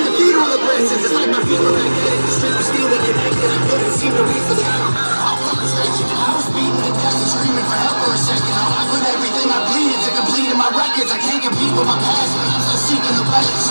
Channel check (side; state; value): both; inverted; correlation -1.00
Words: cathedral of blessings. It's like my feet were magnetic, the street was steel, we connected. I couldn't seem to reach the sky, no matter how frustration. And I was beating to death and screaming for help for a second. Now I put everything I bleeded to complete in my records. I can't compete with my past, but I'm still seeking the balance.